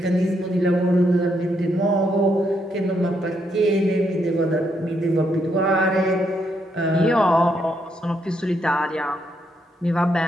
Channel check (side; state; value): both; normal; correlation 0.77